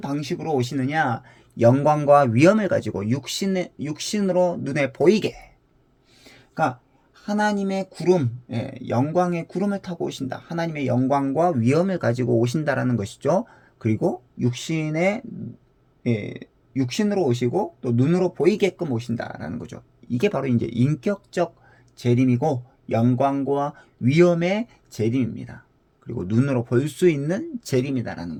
오시느냐? 영광과 위엄을 가지고 육신으로 눈에 보이게. 그러니까 하나님의 구름, 영광의 구름을 타고 오신다. 하나님의 영광과 위엄을 가지고 오신다라는 것이죠. 그리고 육신으로 오시고 또 눈으로 보이게끔 오신다라는 거죠. 이게 바로 이제 인격적 재림이고 영광과 위엄의 재림입니다. 그리고 눈으로 볼 수 있는 재림이다라는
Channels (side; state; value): both; identical; correlation 1.00